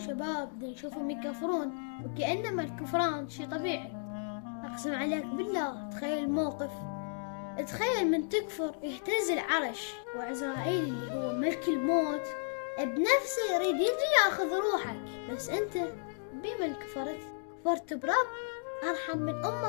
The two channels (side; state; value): right; silent; digital silence